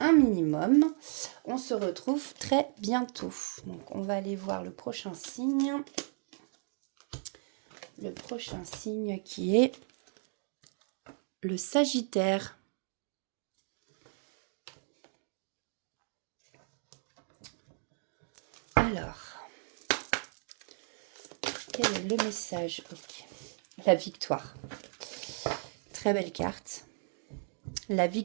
minimum. On se retrouve très bientôt. Donc, on va aller voir le prochain signe. Le prochain signe qui est le Sagittaire. Alors, quel est le message? Okay. La victoire. Très belle carte. La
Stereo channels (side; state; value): left; silent; 55 dB below the other